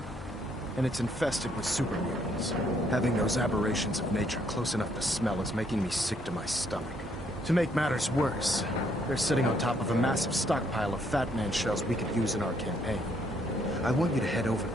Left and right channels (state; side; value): normal; both; correlation 0.69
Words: And it's infested with super mutants. Having those aberrations of nature close enough to smell is making me sick to my stomach. To make matters worse, they're sitting on top of a massive stockpile of Fat Man shells we could use in our campaign. I want you to head over